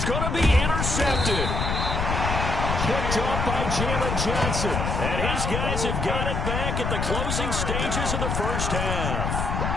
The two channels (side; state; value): left; noise; rumble, 1 dB below the sound